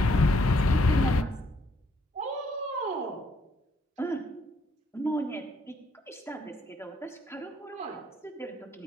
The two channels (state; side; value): normal; both; correlation 0.70